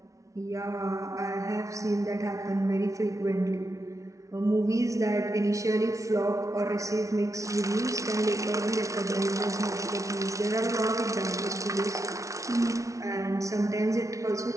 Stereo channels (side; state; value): left; late; 0.15 ms